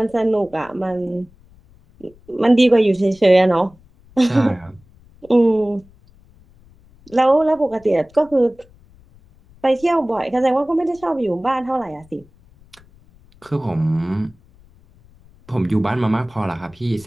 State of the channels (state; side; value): noise; left; rumble, 28 dB below the sound